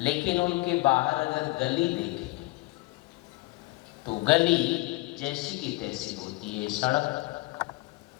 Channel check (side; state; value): right; quieter; 21.9 dB